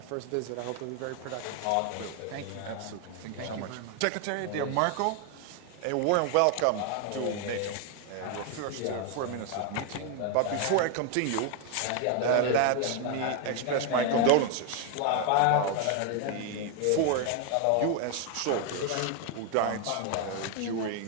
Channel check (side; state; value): both; different; correlation 0.01